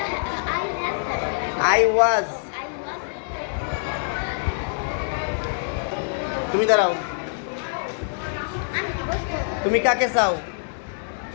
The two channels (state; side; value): silent; right; digital silence